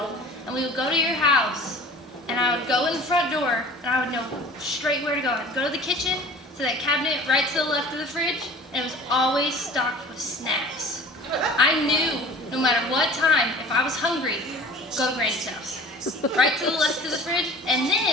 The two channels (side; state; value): both; normal; correlation 0.44